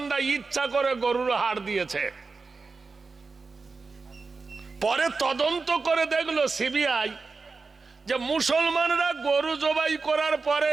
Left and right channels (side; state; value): left; quieter; 4.3 dB